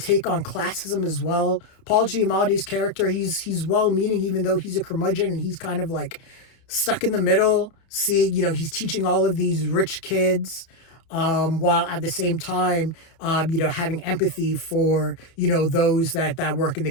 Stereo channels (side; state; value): right; late; 30 ms